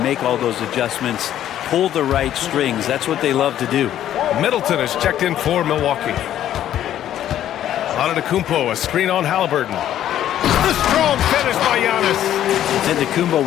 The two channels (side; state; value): right; quieter; 11.5 dB